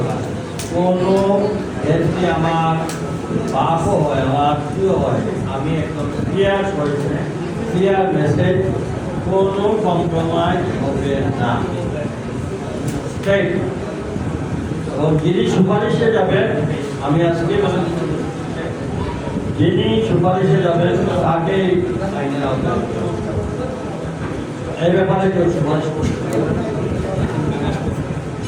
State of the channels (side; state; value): both; identical; correlation 1.00